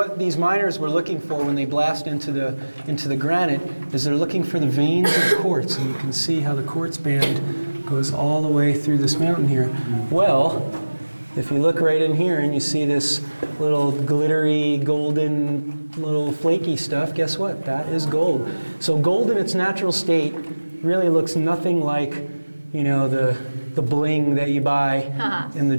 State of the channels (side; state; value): both; inverted; correlation -1.00